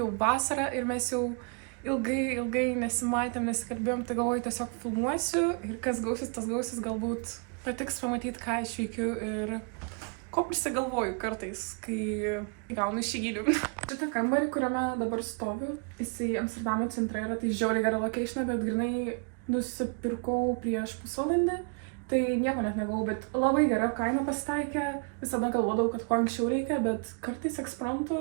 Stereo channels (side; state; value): left; quieter; 37.9 dB